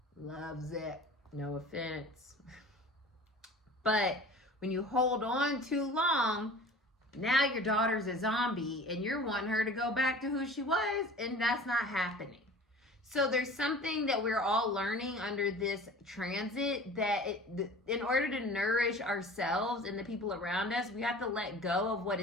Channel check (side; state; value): both; normal; correlation 0.42